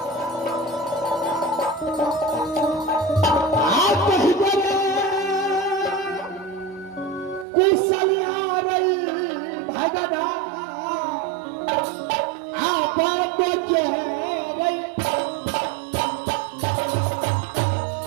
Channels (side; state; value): left; drops out; at 7.5 s